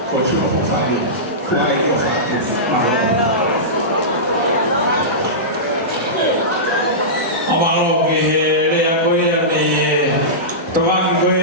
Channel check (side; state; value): both; normal; correlation -0.17